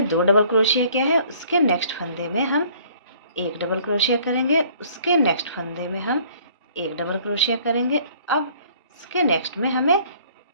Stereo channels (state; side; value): inverted; both; correlation -0.56